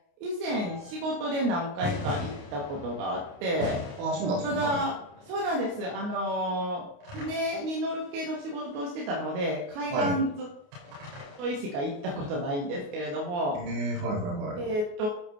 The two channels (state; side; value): late; left; 28 ms